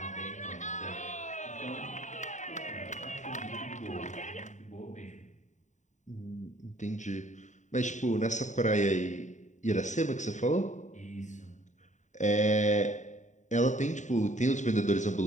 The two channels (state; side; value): late; right; 0.35 ms